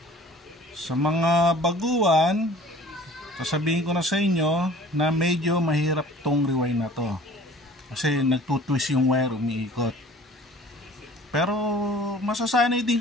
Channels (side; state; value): both; normal; correlation 0.48